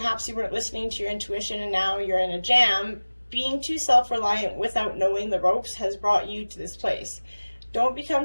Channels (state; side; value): inverted; both; correlation -1.00